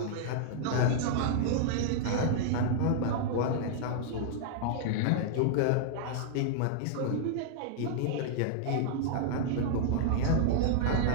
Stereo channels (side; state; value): both; different; correlation -0.01